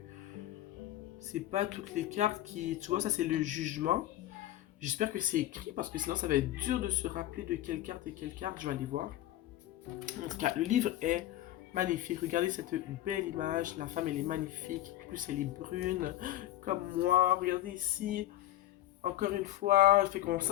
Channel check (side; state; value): right; quieter; 14.1 dB